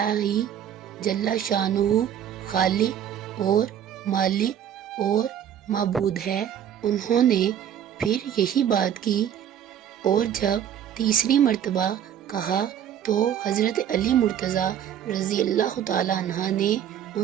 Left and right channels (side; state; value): left; quieter; 9.7 dB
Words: ہی جل شانہ خالق اور مالک اور معبود ہے۔ انہوں نے پھر یہی بات کی اور جب تیسری مرتبہ کہا تو حضرت علی مرتضیٰ رضی اللہ تعالیٰ عنہ نے